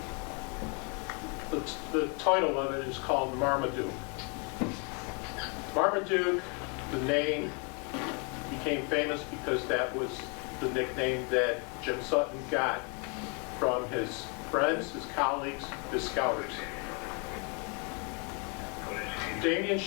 the title of it is called Marmaduke. Marmaduke, the name, became famous because that was the nickname that Jim Sutton got from his friends, his colleagues, his scouters. Damian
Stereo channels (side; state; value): right; quieter; 35.3 dB